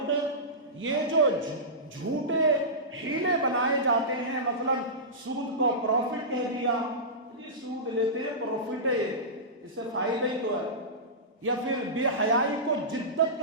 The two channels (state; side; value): normal; both; correlation -0.18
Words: یہ جو جھوٹے ہیلے بنائے جاتے ہیں، مثلا سود کو پروفٹ کہہ دیا، یہ سود لیتے ہیں پروفٹ ہے، اس سے فائدہ ہی تو ہے، یا پھر بے حیائی کو جدت